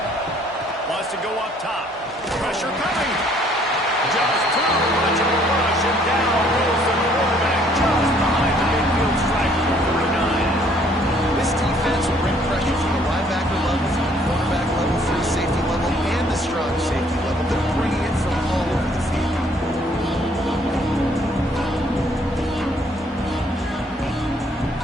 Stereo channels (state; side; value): normal; both; correlation 0.63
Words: Wants to go up top. Pressure coming. Just too much of a rush, and down goes the quarterback just behind the midfield stripe at the 49. This defense will bring pressure from the linebacker level, from the quarterback level, free safety level, and the strong safety level. They're bringing it from all over the field.